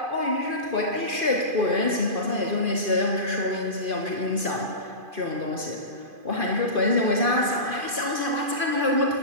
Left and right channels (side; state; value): left; late; 2.5 ms